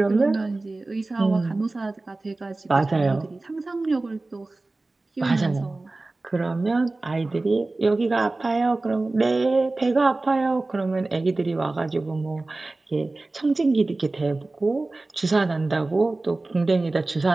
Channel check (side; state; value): left; quieter; 3.1 dB